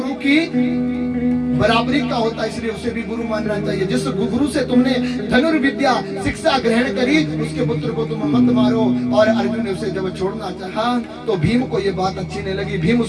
की बराबरी का होता है, इसलिए उसे भी गुरु मानना चाहिए। जिस गुरु से तुमने धनुर्विद्या शिक्षा ग्रहण करी उसके पुत्र को तुम मत मारो। और अर्जुन ने उसे जब छोड़ना चाहा तो भीम को ये बात अच्छी नहीं लगी, भीम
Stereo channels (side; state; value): both; identical; correlation 1.00